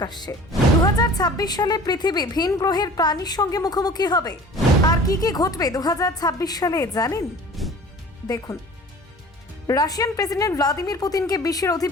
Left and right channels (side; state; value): both; normal; correlation 0.44